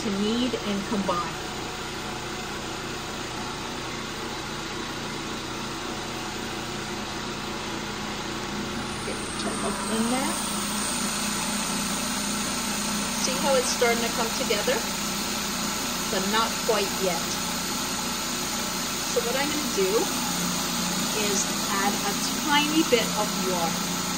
to knead and combine. Get your milk in there. See how it's starting to come together? But not quite yet. So what I'm going to do is add a tiny bit of water.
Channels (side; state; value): both; identical; correlation 1.00